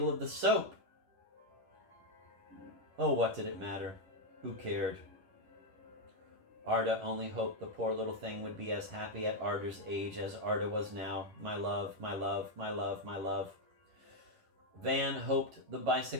of the soap. Oh, what did it matter? Who cared? Arda only hoped the poor little thing would be as happy at Arda's age as Arda was now. My love, my love, my love, my love. Van hoped the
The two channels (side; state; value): left; late; 10 ms